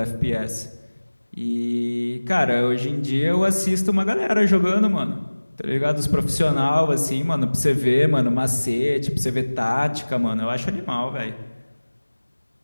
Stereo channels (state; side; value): inverted; both; correlation -1.00